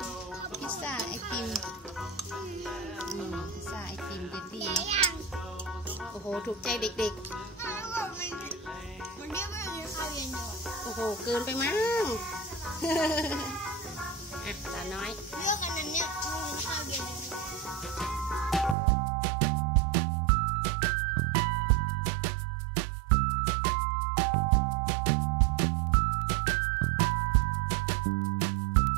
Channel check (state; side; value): drops out; left; at 18.8 s